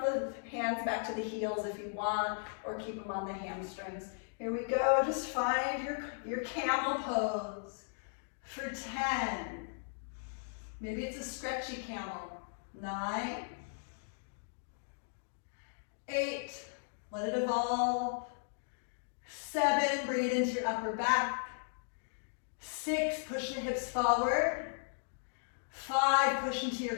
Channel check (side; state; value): right; silent; digital silence